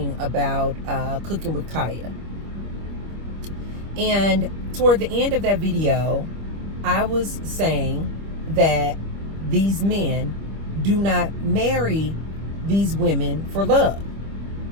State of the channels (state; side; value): late; left; 25 ms